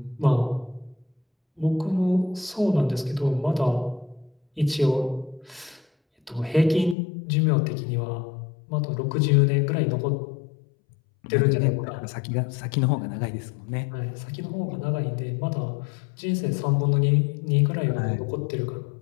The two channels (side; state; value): right; drops out; at 7.0 s